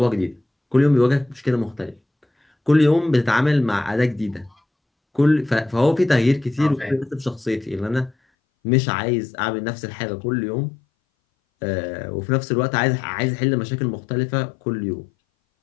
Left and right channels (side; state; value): right; drops out; at 8.2 s